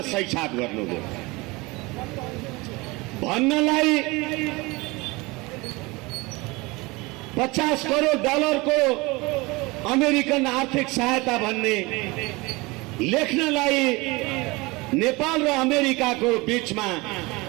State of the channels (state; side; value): quieter; left; 23.8 dB